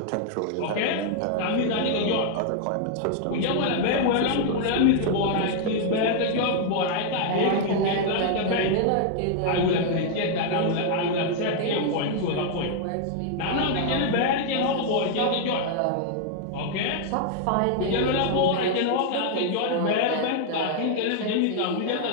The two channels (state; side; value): different; both; correlation 0.00